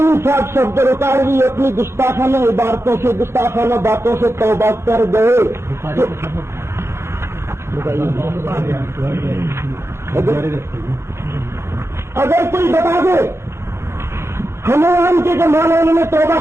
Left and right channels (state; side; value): late; left; 0.13 ms